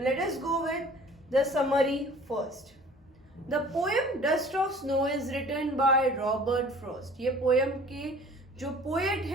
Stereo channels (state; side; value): normal; both; correlation 0.48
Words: let us go with the summary first. The poem dust of snow is written by Robert Frost. ये पोएम के जो पोएट